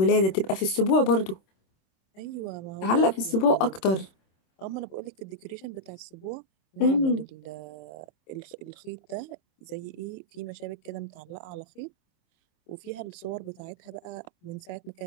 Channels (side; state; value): right; late; 26 ms